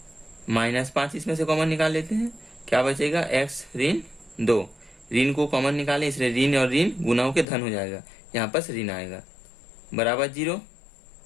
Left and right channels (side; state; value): right; drops out; at 7.5 s